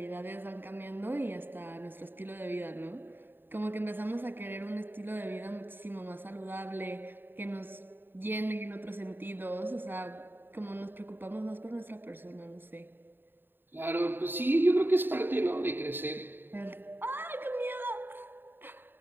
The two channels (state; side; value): late; left; 0.096 ms